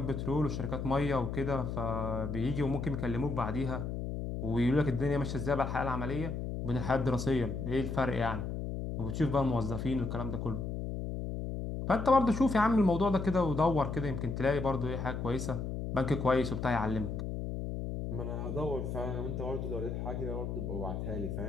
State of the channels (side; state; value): left; noise; hum, 4 dB below the sound